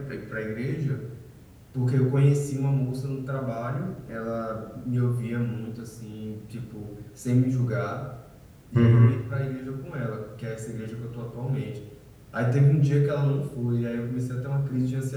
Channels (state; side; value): identical; both; correlation 1.00